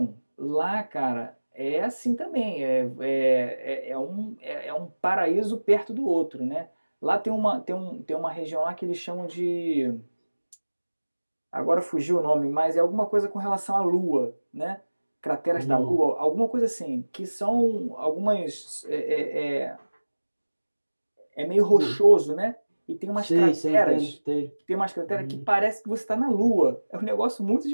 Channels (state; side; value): inverted; both; correlation -1.00